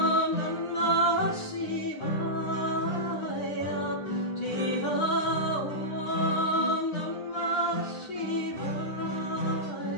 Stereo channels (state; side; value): late; right; 9.9 ms